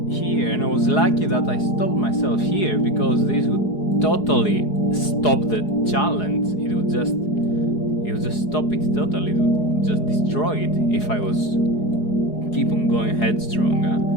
here, and I was lucky that I stopped myself here, because this would totally stop the challenge. It would just stop it totally. It would just destroy it if I was keep on going headstrong.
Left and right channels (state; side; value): late; right; 4.8 ms